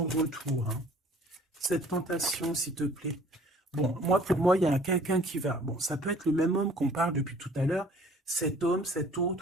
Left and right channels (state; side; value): normal; both; correlation 0.53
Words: retour, hein. Cette tentation, s'il te plaît. Bon, pour moi, il y a quelqu'un qui va... Bon, ça peut être le même homme qu'on parle depuis tout à l'heure. Cet homme, cet